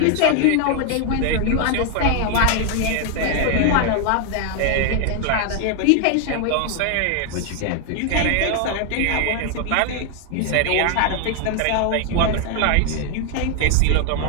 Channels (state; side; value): different; both; correlation 0.00